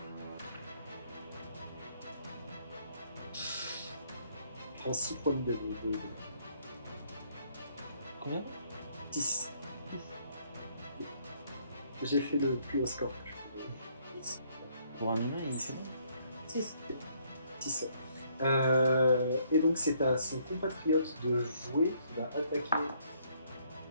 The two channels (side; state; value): both; inverted; correlation -0.68